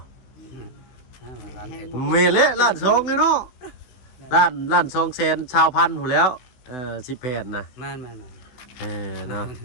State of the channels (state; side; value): late; right; 16 ms